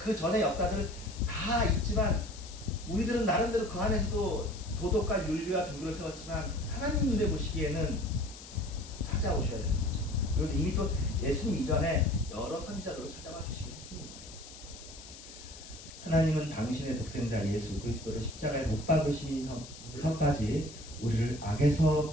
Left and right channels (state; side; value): noise; left; hiss, 16 dB below the sound